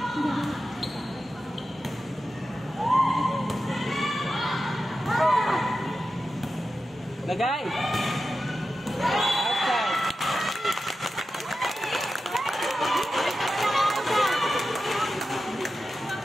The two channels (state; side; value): normal; both; correlation 0.92